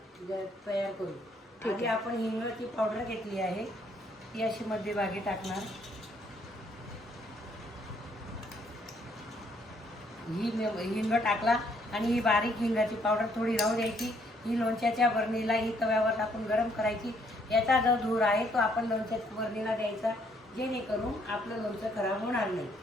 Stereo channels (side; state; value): both; normal; correlation 0.68